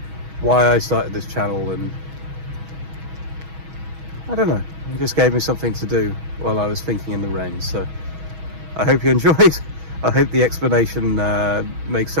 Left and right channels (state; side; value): late; left; 6.3 ms